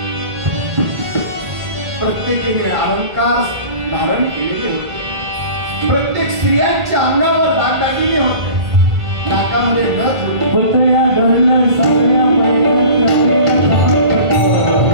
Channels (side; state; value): left; late; 1.8 ms